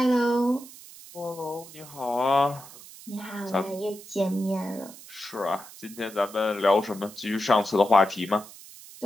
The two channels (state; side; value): noise; right; hiss, 18 dB below the sound